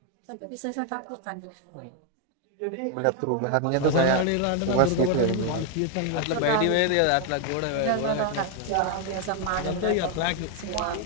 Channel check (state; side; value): different; both; correlation 0.00